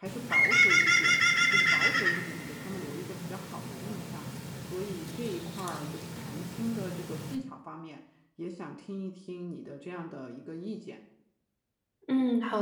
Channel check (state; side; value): identical; both; correlation 1.00